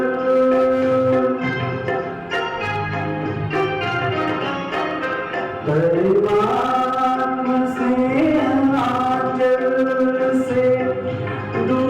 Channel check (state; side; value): identical; both; correlation 1.00